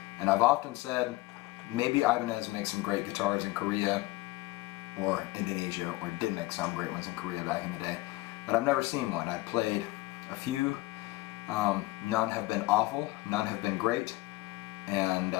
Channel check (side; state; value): right; quieter; 20.0 dB